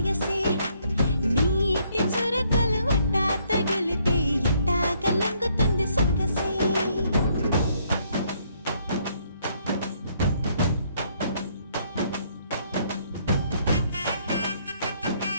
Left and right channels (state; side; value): inverted; both; correlation -0.69